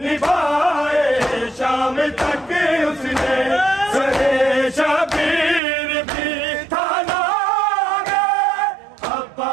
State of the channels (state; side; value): drops out; left; at 5.6 s